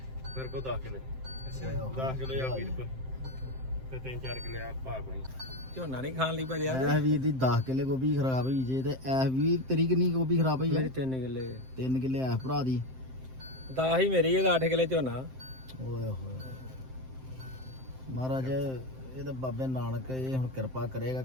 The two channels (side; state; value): left; late; 7.7 ms